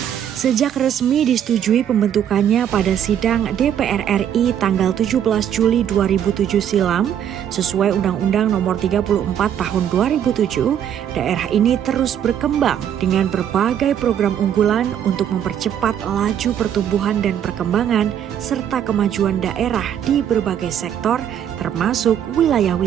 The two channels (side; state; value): left; quieter; 9.5 dB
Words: Sejak resmi disetujui pembentukannya pada sidang DPR RI tanggal 17 Juli 2007 silam, sesuai Undang-Undang Nomor 34 Tahun 2007, daerah ini terus berkembang dengan berbagai program unggulan untuk mempercepat laju pertumbuhan dan perkembangan serta kemajuan daerah di berbagai sektor, termasuk